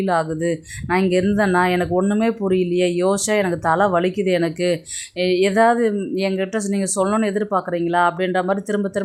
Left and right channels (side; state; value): both; identical; correlation 1.00